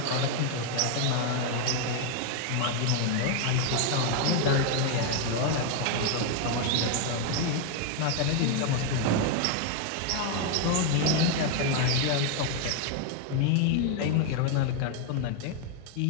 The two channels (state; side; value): different; both; correlation 0.01